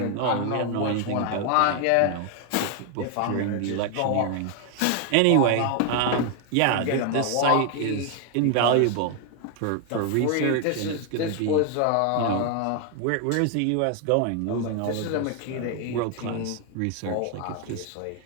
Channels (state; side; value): different; both; correlation 0.01